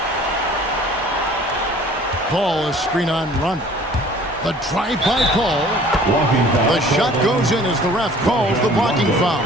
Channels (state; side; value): normal; both; correlation 0.51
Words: Paul is screen on Rondo. The drive by Paul. The shot goes in as the ref calls the blocking foul.